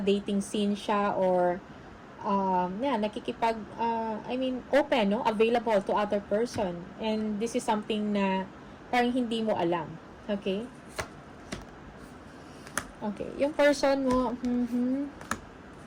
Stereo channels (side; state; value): both; identical; correlation 1.00